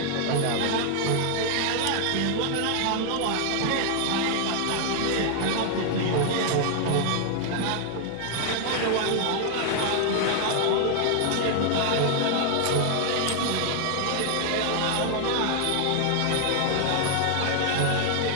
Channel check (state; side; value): different; both; correlation 0.00